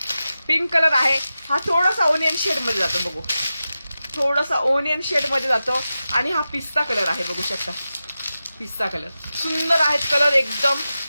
पिंक कलर आहे. हा थोडासा ओनियन शेड मध्ये जातो. बघू थोडासा ओनियन शेड मध्ये जातो. आणि हा पिस्ता कलर आहे बघू शकता. पिस्ता कलर सुंदर आहेत कलर एकदम.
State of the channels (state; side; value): inverted; both; correlation -0.93